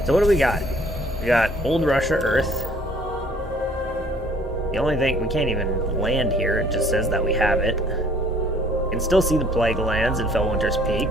So what do we got? We got Old Russia Earth. The only thing, we can't even land here, it just says that we have it. You can still see the Plague Lands in Fellwinter's Peak.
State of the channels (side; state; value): both; normal; correlation 0.57